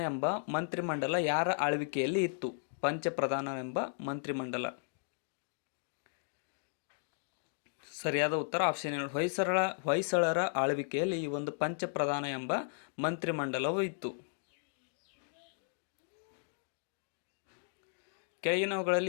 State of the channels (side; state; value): right; silent; digital silence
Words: ಎಂಬ ಮಂತ್ರಿಮಂಡಲ ಯಾರ ಆಳ್ವಿಕೆಯಲ್ಲಿ ಇತ್ತು? ಪಂಚಪ್ರಧಾನ ಎಂಬ ಮಂತ್ರಿಮಂಡಲ. ಸರಿಯಾದ ಉತ್ತರ ಆಪ್ಷನ್ ನೋಡಿ. ಹೊಯ್ಸಳರ ಆಳ್ವಿಕೆಯಲ್ಲಿ ಈ ಒಂದು ಪಂಚಪ್ರಧಾನ ಎಂಬ ಮಂತ್ರಿಮಂಡಲವು ಇತ್ತು.